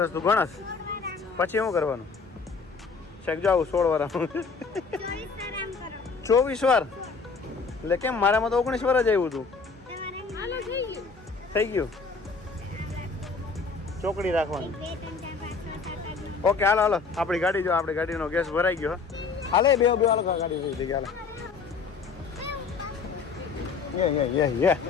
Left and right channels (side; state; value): right; quieter; 4.8 dB